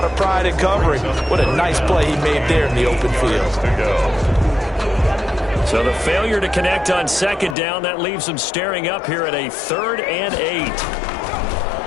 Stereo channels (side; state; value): right; drops out; at 7.6 s